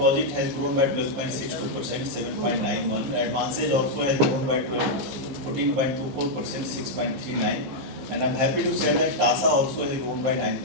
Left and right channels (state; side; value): late; left; 15 ms